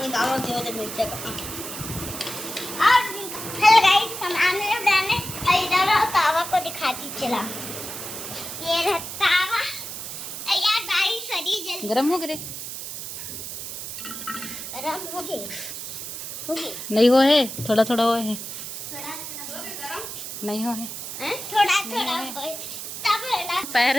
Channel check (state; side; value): noise; right; hiss, 8 dB below the sound